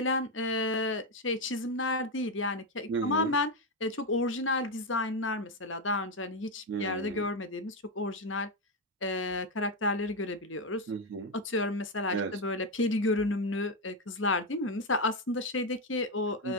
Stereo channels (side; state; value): both; normal; correlation 0.07